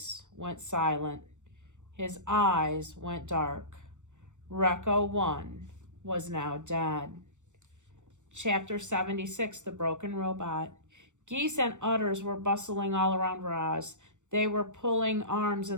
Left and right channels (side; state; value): left; late; 0.85 ms